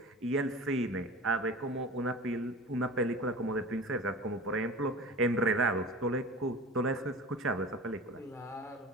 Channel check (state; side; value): normal; both; correlation 0.36